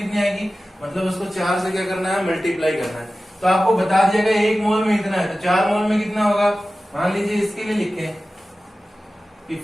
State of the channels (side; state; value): both; normal; correlation 0.96